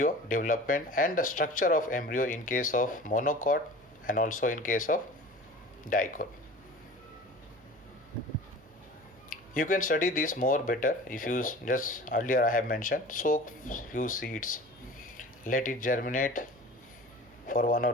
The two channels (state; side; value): normal; both; correlation 0.40